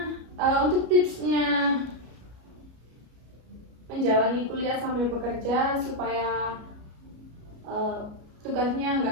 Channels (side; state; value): left; late; 33 ms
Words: untuk tipsnya menjalani kuliah sambil bekerja supaya tugasnya